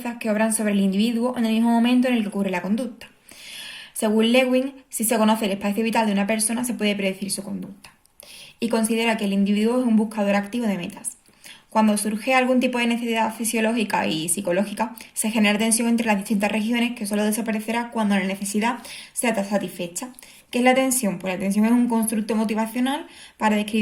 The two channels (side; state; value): both; identical; correlation 1.00